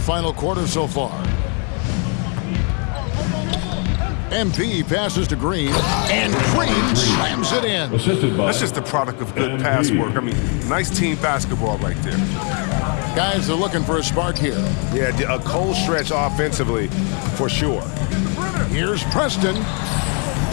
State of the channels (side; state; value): right; quieter; 38.5 dB